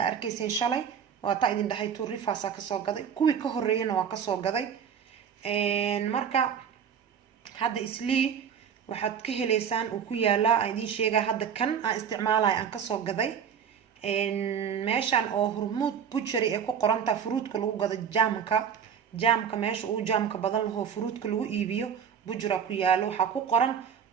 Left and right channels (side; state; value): left; quieter; 7.8 dB